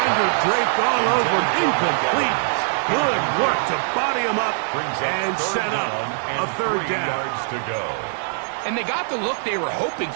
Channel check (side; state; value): left; silent; digital silence